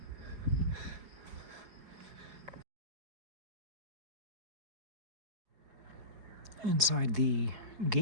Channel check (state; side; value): late; left; 4.7 ms